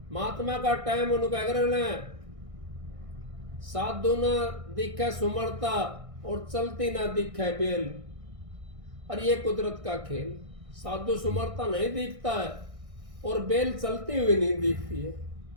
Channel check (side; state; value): left; late; 1.6 ms